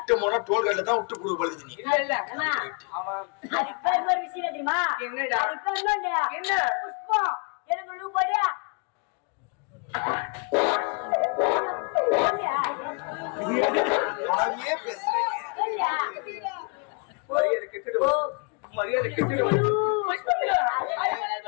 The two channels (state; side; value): quieter; right; 35.5 dB